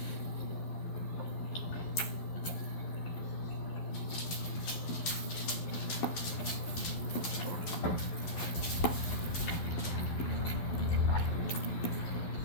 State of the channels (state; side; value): late; right; 11 ms